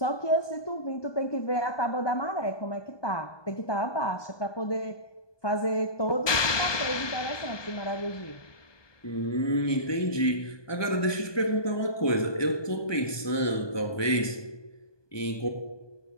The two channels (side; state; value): right; late; 1.2 ms